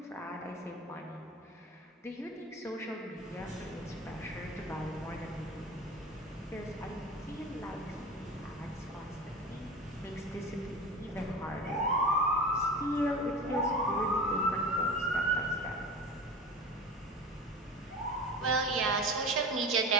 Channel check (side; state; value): both; normal; correlation 0.33